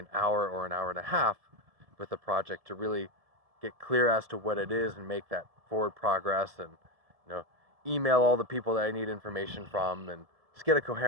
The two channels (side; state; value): left; late; 1.7 ms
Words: hour or an hour and a half with a project to really get clear as to what it is and make that forward progress, and email all the people that I need information from and just get a